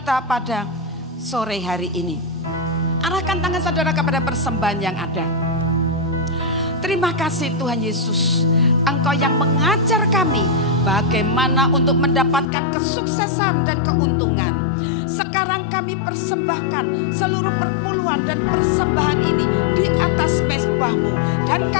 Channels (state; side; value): drops out; right; at 12.5 s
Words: pada sore hari ini. Arahkan tangan saudara kepada persembahan yang ada. Terima kasih Tuhan Yesus. Engkau yang mengajar kami bagaimana untuk mendapatkan kesuksesan dan keuntungan. Sekarang kami persembahkan seluruh perpuluhan dan persembahan ini di atas mezbah-Mu. Dan